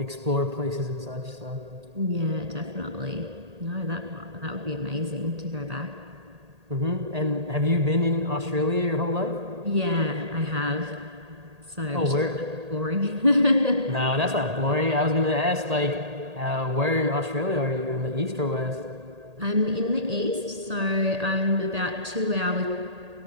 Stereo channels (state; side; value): late; left; 1.8 ms